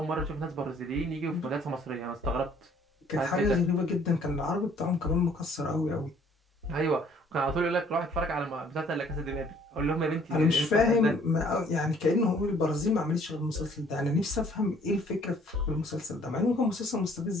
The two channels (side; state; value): both; normal; correlation 0.59